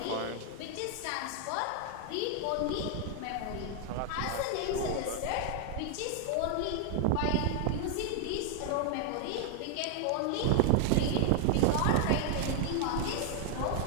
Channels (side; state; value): both; different; correlation 0.00